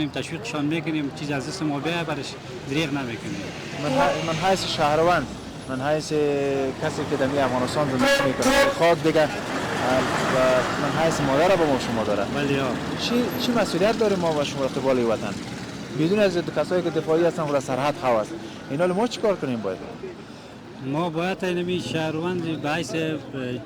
تشویقشان میکنیم چیز از دست ما بیای برش دریغ نمیکنیم. من حیث شهروند من حیث کسی که در افغانستان زندگی میکنه خاک دیگه من حیث مادر با ما شما داره. بله چی مسئولیت داریم ما و شما قبال وطن بدون از کسایی که دفاعی هستن و سرحد خواص اینا ما چیکار کنیم باید؟ ما باید اینمی شهروند به حیث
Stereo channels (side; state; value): both; identical; correlation 1.00